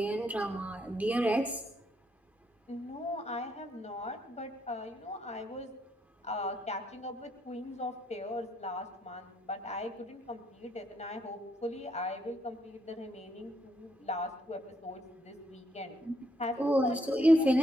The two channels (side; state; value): both; normal; correlation 0.74